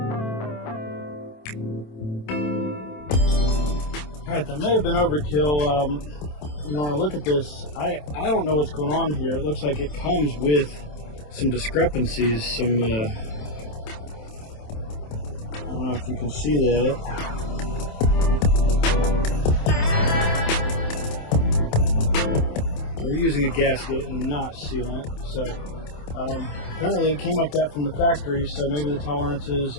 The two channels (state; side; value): late; right; 27 ms